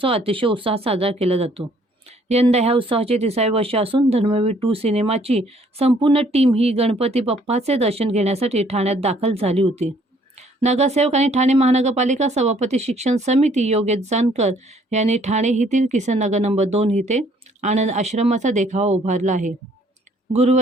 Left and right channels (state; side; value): normal; both; correlation 0.62